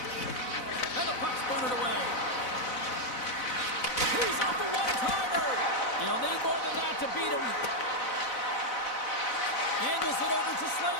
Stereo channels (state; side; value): late; right; 4.0 ms